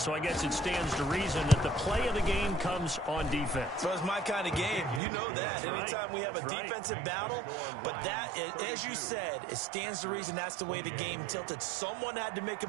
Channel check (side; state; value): left; drops out; at 5.0 s